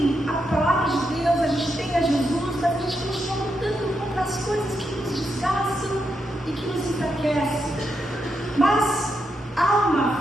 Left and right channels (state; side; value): normal; both; correlation 0.83